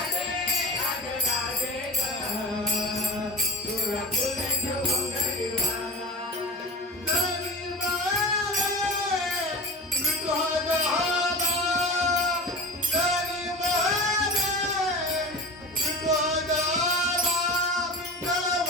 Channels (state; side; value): normal; both; correlation 0.31